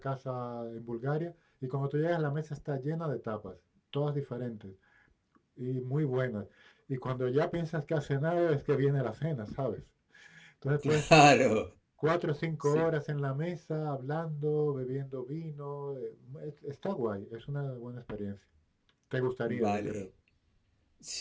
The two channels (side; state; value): both; identical; correlation 1.00